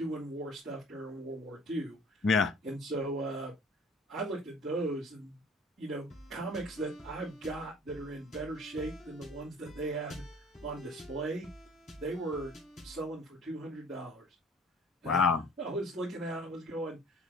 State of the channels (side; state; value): both; normal; correlation 0.50